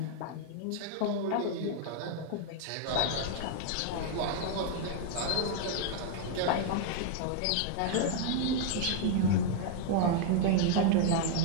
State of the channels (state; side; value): different; both; correlation 0.00